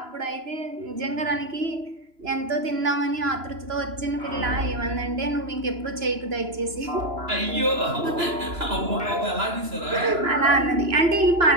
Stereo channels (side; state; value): left; late; 2.9 ms